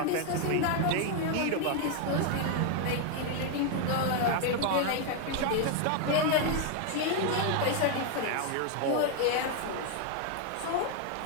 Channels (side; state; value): both; different; correlation 0.01